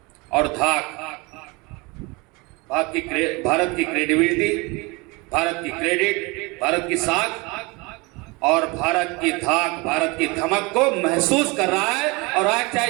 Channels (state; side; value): quieter; left; 26.1 dB